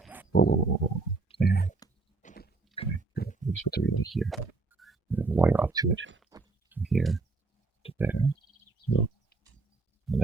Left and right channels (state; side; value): quieter; left; 3.7 dB